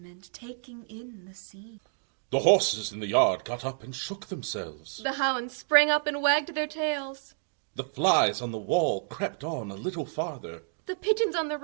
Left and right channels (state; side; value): silent; left; digital silence